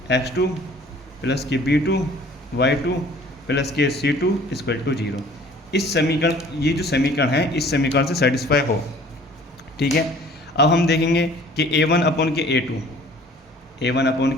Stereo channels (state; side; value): normal; both; correlation 0.51